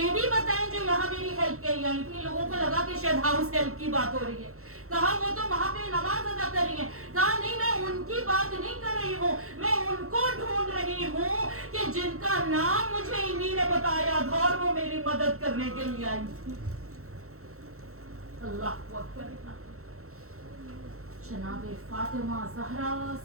بتائیں جو یہاں میری ہیلپ کے لیے آئی تھی. لوگوں کو لگا کہ شاید ہاؤس ہیلپ کی بات ہو رہی ہے. کہا وہ تو وہاں پہ نماز ادا کر رہی ہیں. کہا نہیں میں ان کی بات نہیں کر رہی ہوں, میں ان کو ڈھونڈ رہی ہوں کہ جن کا نام مجھے انہی نے بتایا تھا اور وہ میری مدد کرنے کے لیے آئی تھی. اللہ اکبر. जनाब फातिमा ज़हरा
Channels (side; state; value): left; late; 0.63 ms